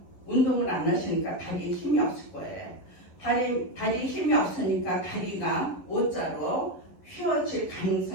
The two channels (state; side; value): late; right; 11 ms